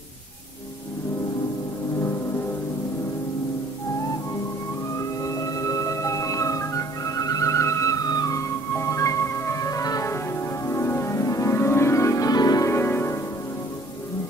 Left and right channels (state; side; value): normal; both; correlation 0.56